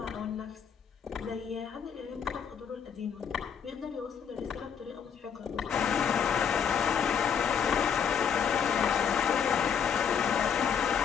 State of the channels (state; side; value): quieter; right; 7.4 dB